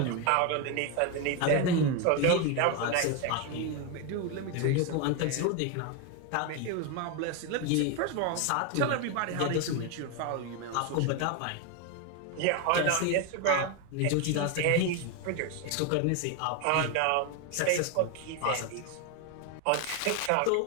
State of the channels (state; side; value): different; both; correlation 0.02